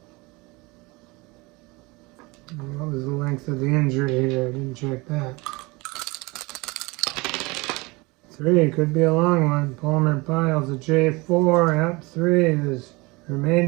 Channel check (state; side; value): quieter; left; 24.6 dB